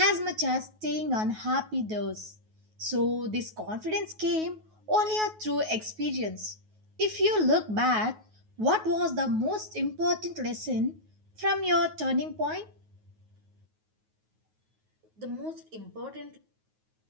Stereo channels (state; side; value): late; left; 9.4 ms